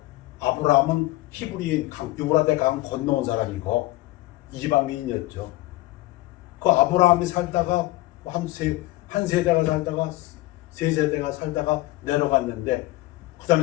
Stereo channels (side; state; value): right; quieter; 18.5 dB